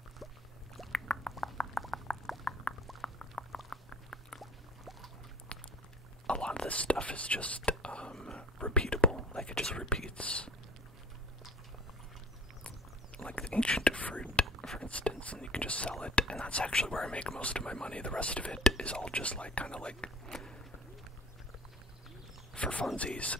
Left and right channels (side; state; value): both; normal; correlation 0.45